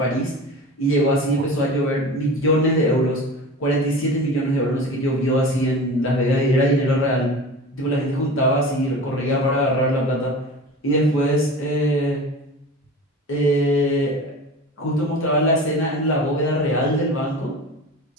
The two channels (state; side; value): normal; both; correlation 0.35